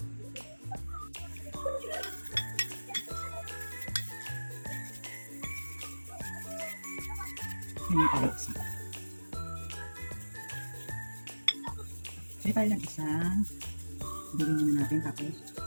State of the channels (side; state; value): both; inverted; correlation -1.00